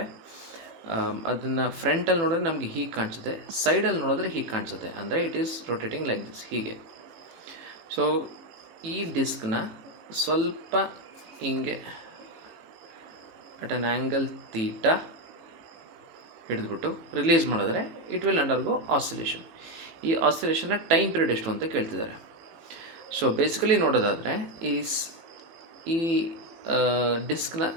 ಅದನ್ನು ಫ್ರಂಟಲ್ಲಿ ನೋಡಿದ್ರೆ ನಮಗೆ ಹೀಗೆ ಕಾಣಿಸುತ್ತೆ, ಸೈಡಲ್ಲಿ ನೋಡಿದ್ರೆ ಹೀಗೆ ಕಾಣಿಸುತ್ತೆ. ಅಂದರೆ it is rotating like this, ಹೀಗೆ. ಸೊ ಈ ಡಿಸ್ಕ್ನ ಸ್ವಲ್ಪ ಹಿಂಗೆ ಅಟ್ ಅನ್ ಆ್ಯಂಗಲ್ ತೀಟಾ ಹಿಡಿದ್ಬಿಟ್ಟು ರಿಲೀಸ್ ಮಾಡಿದ್ರೆ ಇಟ್ ವಿಲ್ ಅಂಡರ್ಗೋ ಆಸಿಲೇಷನ್. ಈ ಆಸಿಲೇಷನ್ನ ಟೈಮ್ ಪೀರಿಯಡ್ ಎಷ್ಟು ಅಂತ ಕೇಳ್ತಿದ್ದಾರೆ. ಸೊ ಬೇಸಿಕಲಿ ನೋಡೋದಾದರೆ ಈ ಡಿಸ್ಕ್ನ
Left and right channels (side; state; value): left; late; 18 ms